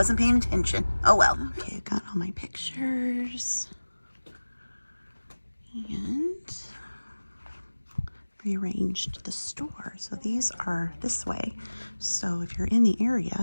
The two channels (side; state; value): both; inverted; correlation -1.00